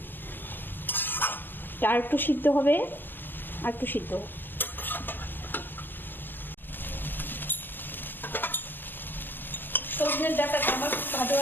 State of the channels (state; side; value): late; right; 0.095 ms